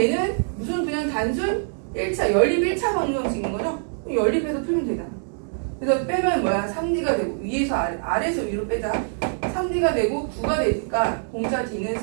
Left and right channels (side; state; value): left; silent; 63 dB below the other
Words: 무슨 그냥 단순 1차, 연립 1차 방정식인 거죠? 연립해서 풀면 되잖아. 그래서 빼면 뭐야? 3D가 되고 위에서 아래에서 위로 빼자. 3D가 되고 9가 되니까 공차 D는